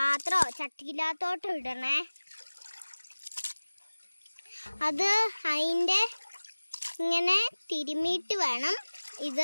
ചട്ടിയില്ലാത്തോട്ടോ ഇടണേ. അത് അതിൻ്റെ ഇങ്ങനെ തിരുമ്മിയിട്ട് വേണം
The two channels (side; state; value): both; inverted; correlation -1.00